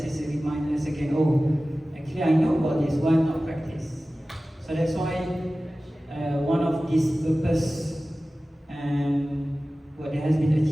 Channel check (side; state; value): both; normal; correlation 0.96